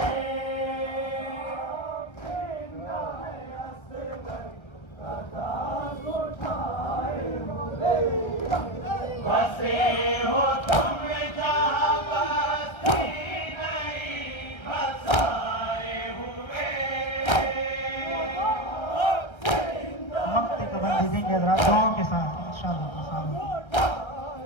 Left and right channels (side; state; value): right; late; 1.2 ms